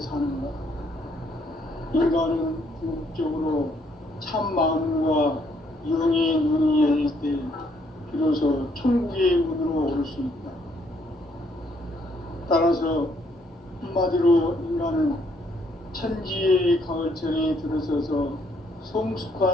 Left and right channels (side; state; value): both; normal; correlation 0.69